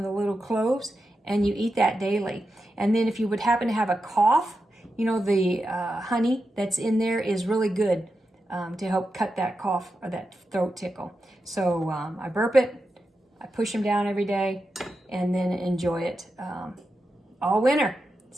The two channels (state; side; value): normal; both; correlation 0.89